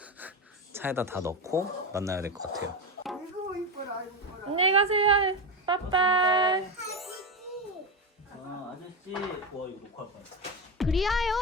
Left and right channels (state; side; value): normal; both; correlation 0.15